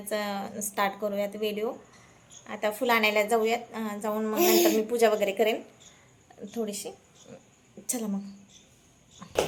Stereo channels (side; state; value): both; identical; correlation 1.00